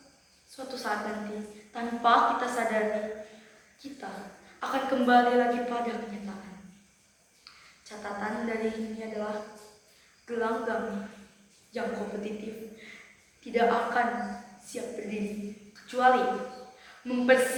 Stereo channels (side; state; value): both; identical; correlation 1.00